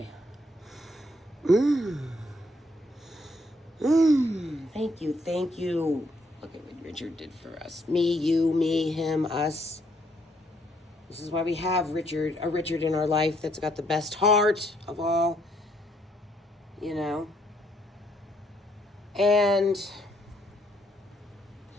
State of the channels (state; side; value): normal; both; correlation 0.70